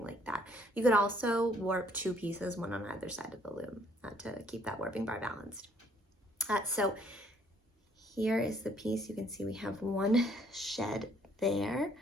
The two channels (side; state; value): both; normal; correlation 0.64